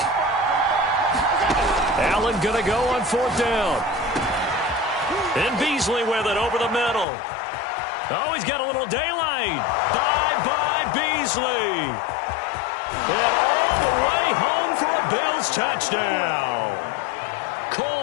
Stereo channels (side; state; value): right; drops out; at 7.1 s